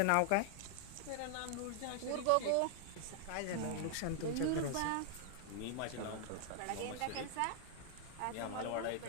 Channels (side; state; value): both; different; correlation 0.00